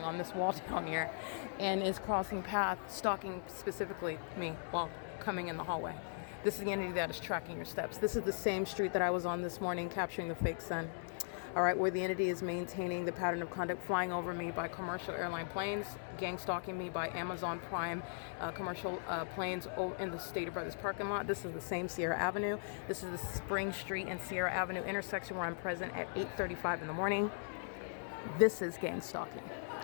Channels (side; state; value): right; silent; digital silence